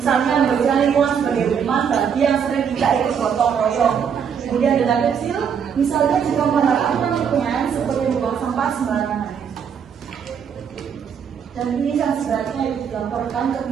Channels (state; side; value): quieter; left; 7.4 dB